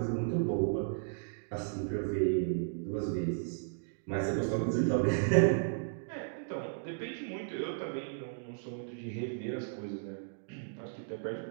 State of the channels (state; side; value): silent; left; digital silence